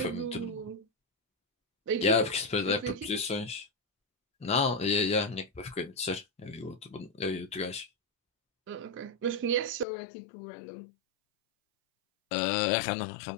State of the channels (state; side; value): drops out; right; at 9.9 s